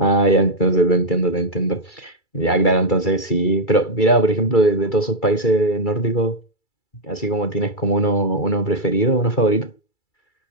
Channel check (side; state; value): right; late; 2.3 ms